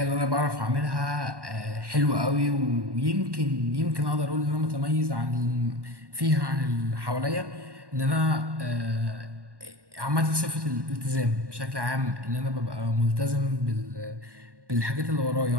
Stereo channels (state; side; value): late; left; 1.1 ms